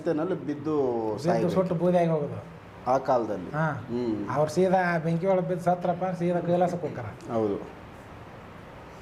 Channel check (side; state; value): both; identical; correlation 1.00